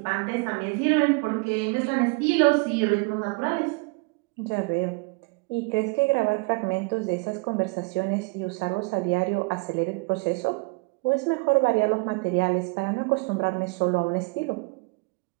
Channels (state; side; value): quieter; left; 29.7 dB